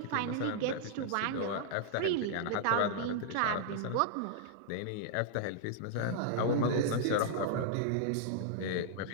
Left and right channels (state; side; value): different; both; correlation -0.01